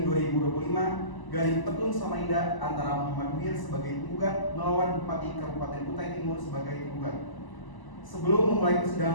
Petun Samarinda antara Muhammad Munir sebagai penggugat melawan Bupati Kabupaten Kutai Timur sebagai penggugat. Sebelum memulai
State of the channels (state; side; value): late; right; 1.0 ms